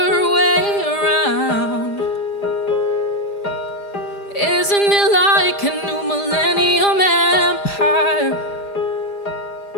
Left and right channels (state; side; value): late; right; 5.0 ms